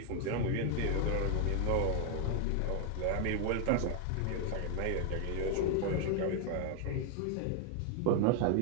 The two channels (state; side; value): different; both; correlation 0.00